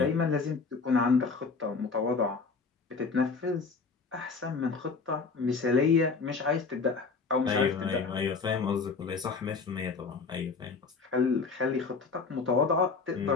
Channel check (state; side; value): quieter; right; 4.6 dB